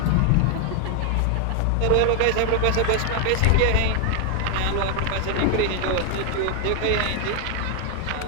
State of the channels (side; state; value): both; different; correlation 0.00